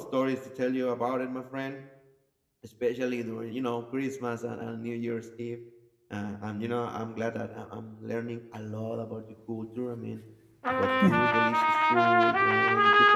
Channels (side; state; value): both; identical; correlation 1.00